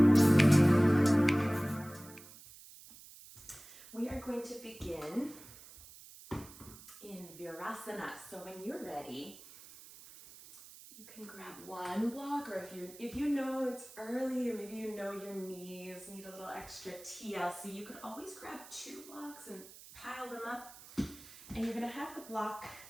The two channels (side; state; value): right; noise; hiss, 18 dB below the sound